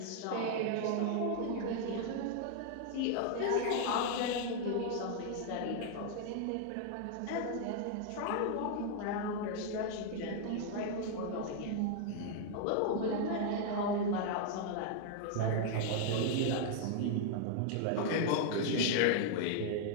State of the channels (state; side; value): different; both; correlation 0.00